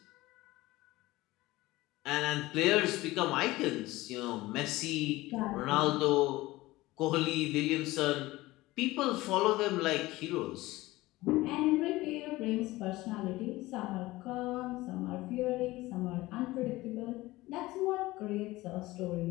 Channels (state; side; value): quieter; right; 18.9 dB